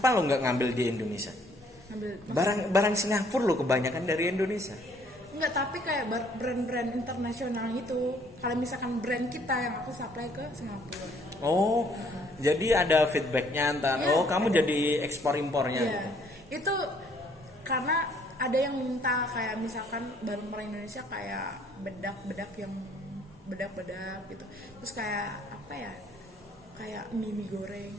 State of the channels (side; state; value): both; normal; correlation 0.63